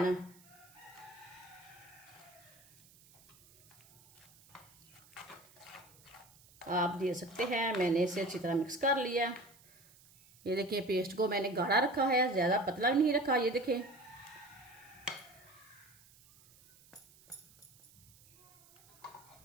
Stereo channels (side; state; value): right; noise; hiss, 26 dB below the sound